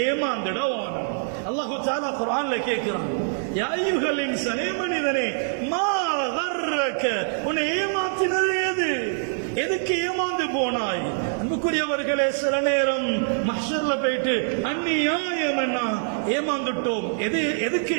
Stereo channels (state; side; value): silent; left; 62 dB below the other